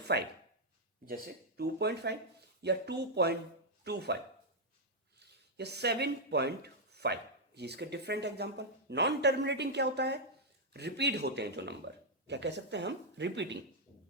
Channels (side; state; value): both; normal; correlation -0.04